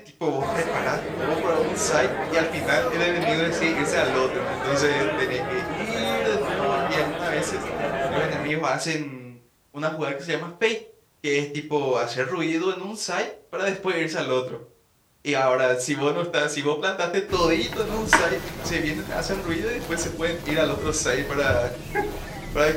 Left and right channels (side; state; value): both; identical; correlation 1.00